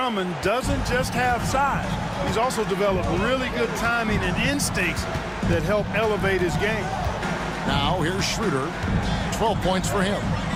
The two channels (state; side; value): identical; both; correlation 1.00